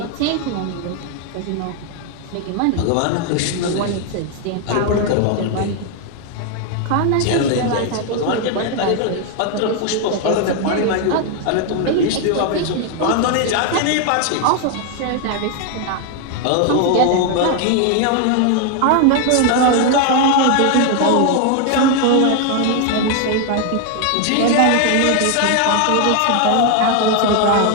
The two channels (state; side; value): different; both; correlation 0.00